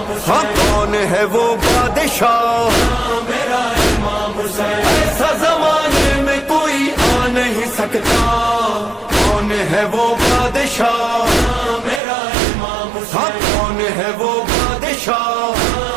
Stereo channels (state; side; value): drops out; left; at 12.0 s